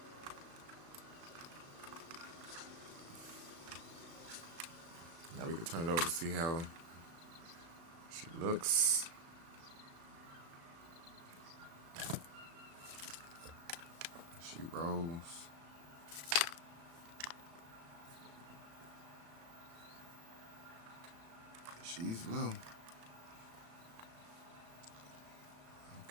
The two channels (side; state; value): left; late; 36 ms